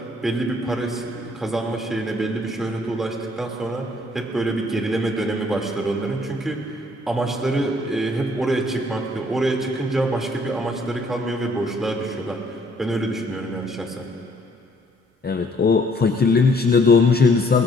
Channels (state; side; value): normal; both; correlation 0.63